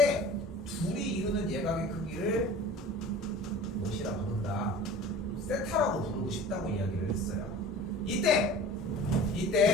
둘이 이루는 예각의 크기를 무엇이라 부른다? 세타라고 부르고 싶다고 이야기를 했어요. 이때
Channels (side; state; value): both; normal; correlation 0.41